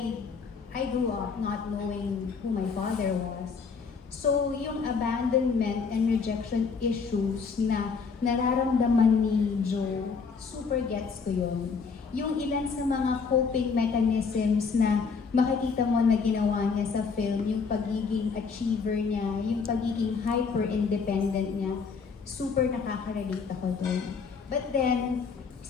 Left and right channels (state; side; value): quieter; right; 5.4 dB